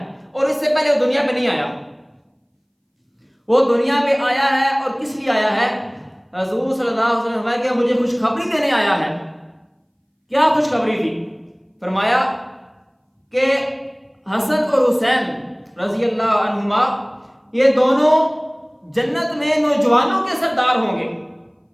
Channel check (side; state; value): both; identical; correlation 1.00